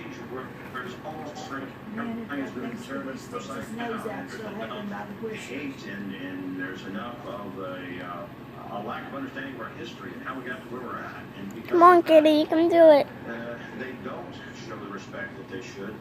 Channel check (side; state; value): both; identical; correlation 1.00